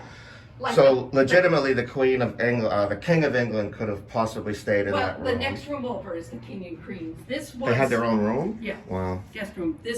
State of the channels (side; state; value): both; identical; correlation 1.00